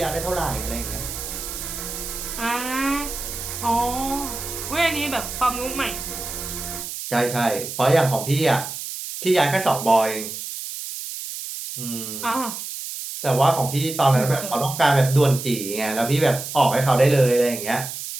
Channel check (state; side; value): noise; right; hiss, 8 dB below the sound